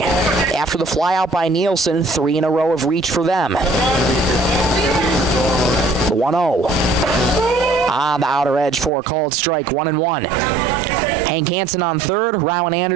After the fly out by Nielsen, 3 in a row of reach for them. 1-0. On the outer edge for a called strike, 1-1. Hank Hansen on third, Rowan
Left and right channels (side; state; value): left; drops out; at 8.9 s